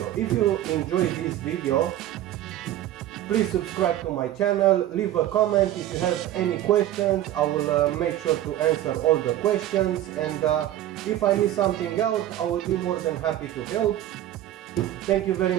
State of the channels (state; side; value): quieter; left; 13.1 dB